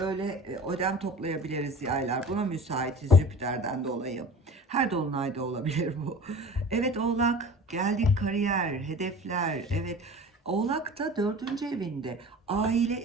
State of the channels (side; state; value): both; normal; correlation 0.40